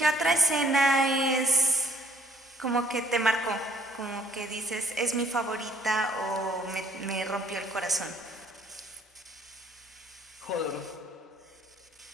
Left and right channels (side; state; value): both; normal; correlation 0.60